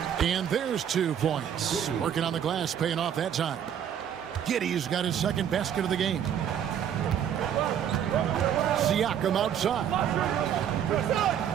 And there's 2 points. Working on the glass, paying off that time. Giddey's got his second basket of the game. Siakam outside.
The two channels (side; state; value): left; quieter; 9.2 dB